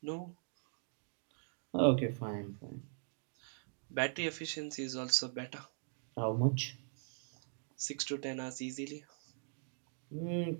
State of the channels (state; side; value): silent; left; digital silence